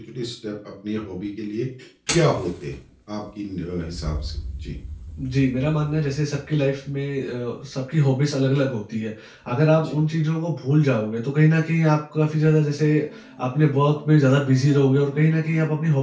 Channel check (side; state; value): both; identical; correlation 1.00